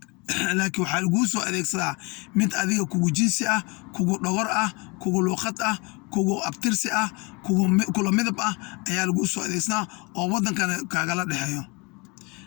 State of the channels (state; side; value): quieter; right; 28.4 dB